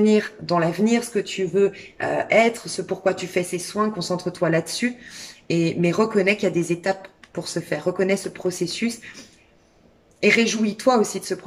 dans l'avenir, ce que tu veux être, ce pourquoi tu fais ces soins. Concentre-toi là-dessus. Mais reconnais qu'il y a des étapes pour se faire. Reconnais ce processus et réjouis-toi aussi de ce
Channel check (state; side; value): identical; both; correlation 1.00